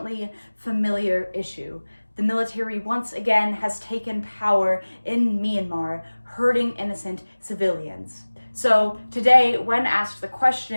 familiar issue. The military once again has taken power in Myanmar, hurting innocent civilians. So today, when asked the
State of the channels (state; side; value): inverted; both; correlation -1.00